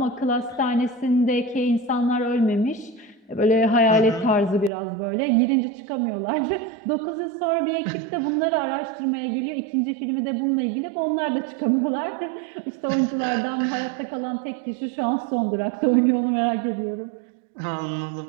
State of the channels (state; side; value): drops out; left; at 4.7 s